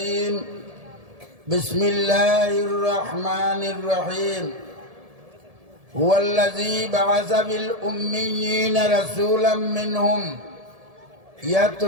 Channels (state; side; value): late; left; 1.7 ms